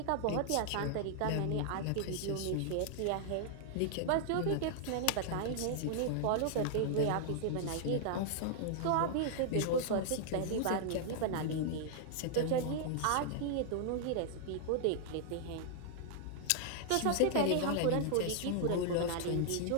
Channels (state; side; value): different; both; correlation -0.01